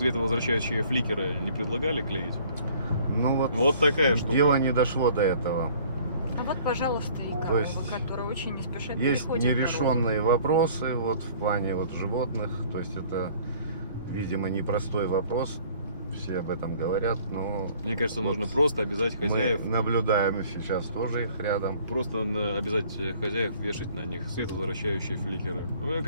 фликеры не предлагали клеить? Ну Вот такая штука. Дело не дошло до этого. А вот, пожалуйста, и То корова, есть которая очень не спешит Есть приходит дорогу. нерешенные вопросы вот в плане вот животных. То есть это, видимо, непростой вопрос. Все об этом говорят, но Мне кажется, Вот нужно просто обязать мы хозяев, наблюдаем сейчас тоже их рядом. просто обязать хозяев вешать на них световозвращающие фликеры. Ну, мне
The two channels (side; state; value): both; inverted; correlation -0.54